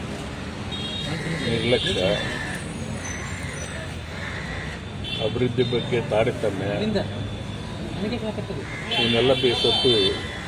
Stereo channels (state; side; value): identical; both; correlation 1.00